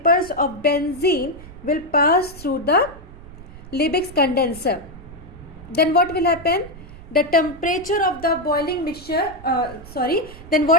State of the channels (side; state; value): right; noise; rumble, 17 dB below the sound